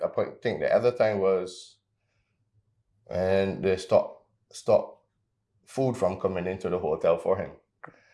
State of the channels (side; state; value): both; identical; correlation 1.00